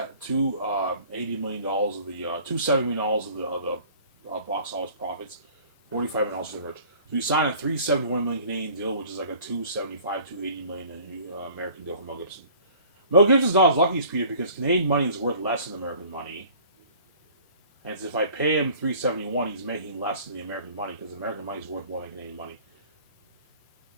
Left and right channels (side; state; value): both; inverted; correlation -0.50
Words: million of the $270 million of the box office profits, $45 for the merch. So we signed a $371 million Canadian deal, which is like a $275, $280 million American deal for Mel Gibson. Mel Gibson's not as lucky as Peter because Canadian money is worth less than American money. And if I pay him $371, he's making less than the American money because American money is worth more than Canadian money.